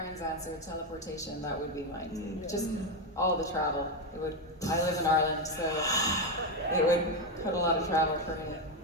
answer, teleportation. That would be mine. Just all the travel. It would. I live in Ireland, so it would put a lot of travel for me.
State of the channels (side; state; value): both; normal; correlation 0.08